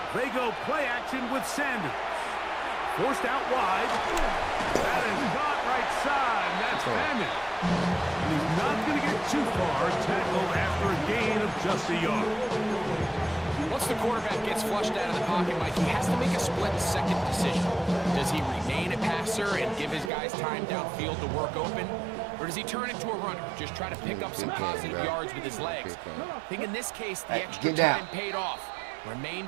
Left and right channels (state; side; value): drops out; left; at 20.1 s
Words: They go play action with Sanders. Forced out wide. That is not right side. That's Hammond. And he's not going to get too far. Tackled after a gain of just a yard. Once the quarterback gets flushed out of the pocket, Mike, he has to make a split-second decision. Does he remain a passer and give his guys time downfield to work open? Or does he turn into a runner, just try to pick up some positive yards with his legs? I think in this case, the extra time paid off.